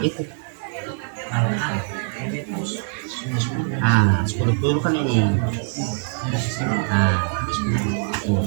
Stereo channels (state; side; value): silent; left; 58 dB below the other